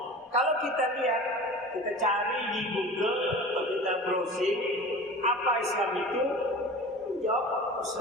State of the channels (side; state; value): both; normal; correlation 0.37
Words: Kalau kita lihat, kita cari di Google atau kita browsing apa Islam itu, jawab